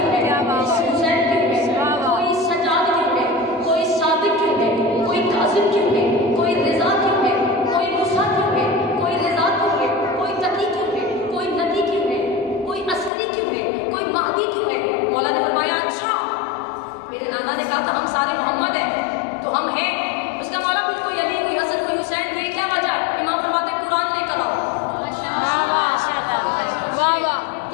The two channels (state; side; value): drops out; right; at 13.1 s